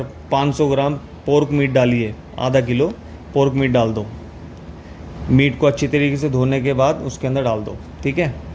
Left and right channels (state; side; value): identical; both; correlation 1.00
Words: 500 ग्राम पोर्क मीट डालिए। आधा किलो पोर्क मीट डाल दो। मीट को अच्छी तरीके से धोने के बाद उसके अंदर डाल दो, ठीक है।